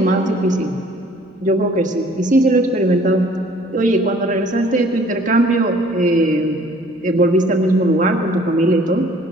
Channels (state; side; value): normal; both; correlation 0.56